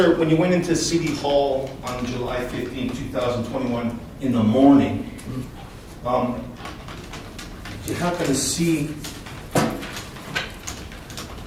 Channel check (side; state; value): both; identical; correlation 1.00